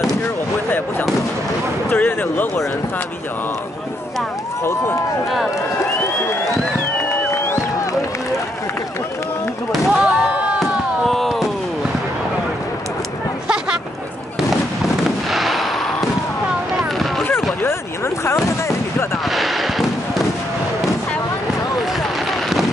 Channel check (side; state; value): both; normal; correlation 0.76